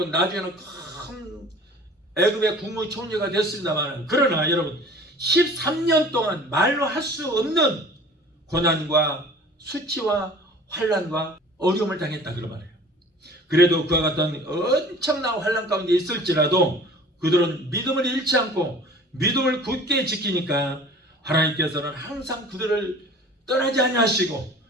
나중에는 큰 애굽의 국무총리가 됐습니다만, 그러나 여러분 13년 동안 말로 할 수 없는 고난과 수치와 환난과 어려움을 당했다 그런 말이에요. 그래도 그와 같은 엄청난 환난 가운데 있을지라도 그들은 믿음을 잃지 않고 믿음을 굳게 지키니까 하나님께서는 항상 그들을 떠나지 아니하시고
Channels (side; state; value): both; normal; correlation 0.46